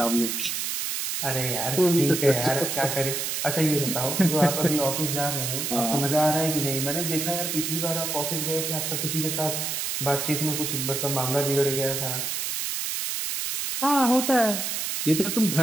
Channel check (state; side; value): noise; right; hiss, 2 dB below the sound